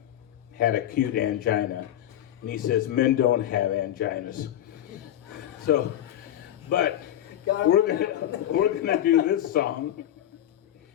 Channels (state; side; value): quieter; right; 11.8 dB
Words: had acute angina, and he says men don't have anginas. So, but we're gonna do this song.